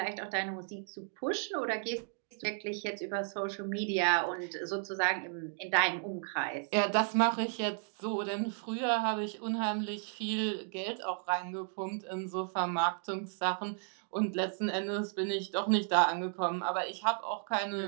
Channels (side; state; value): left; silent; 55 dB below the other